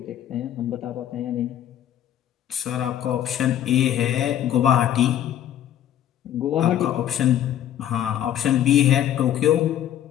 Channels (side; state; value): right; quieter; 11.2 dB